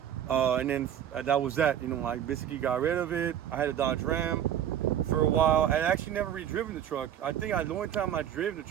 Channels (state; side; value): quieter; left; 10.1 dB